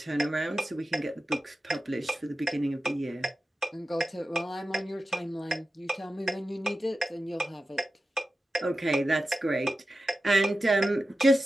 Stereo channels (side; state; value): both; normal; correlation 0.93